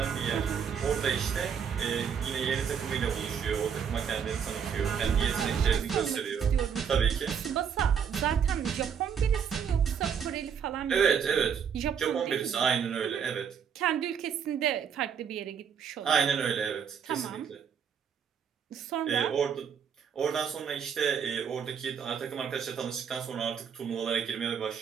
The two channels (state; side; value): quieter; left; 7.4 dB